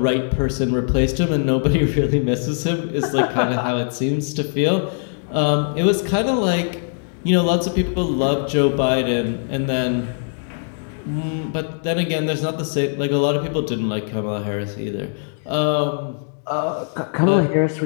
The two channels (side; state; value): right; silent; digital silence